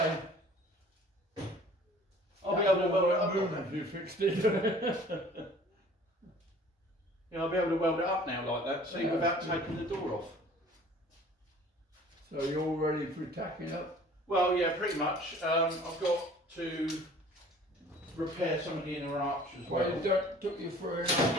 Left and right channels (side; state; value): both; normal; correlation 0.49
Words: I'll be able to weld it up. room if you fixed it. Yeah, I'll be able to weld it up now like that, see, Yeah. without taking the door off. So you're all ready for tacking up? Well, yeah, pretty much. I've got to repair some of the inner arch as Well, well. it took you